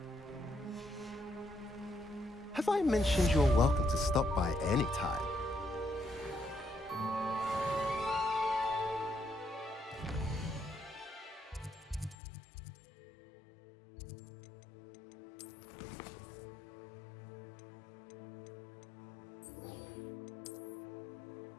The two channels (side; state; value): right; drops out; at 12.2 s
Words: Have I mentioned you're welcome to stop by any time?